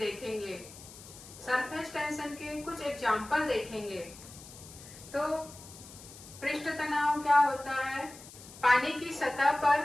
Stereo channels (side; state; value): left; noise; hiss, 17 dB below the sound